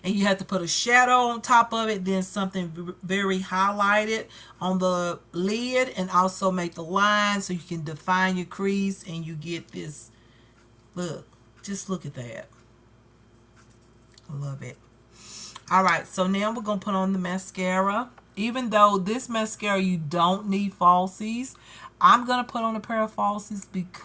And you have to put a shadow on top of it, then something very highlighted on the lid, and also make the line so you can define your crease and you get this look. Just look at that. I love it. All right, so now we're going to put on the mascara. Even though this mascara, you don't need falsies, I'm going to put on a pair of falsies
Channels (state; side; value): identical; both; correlation 1.00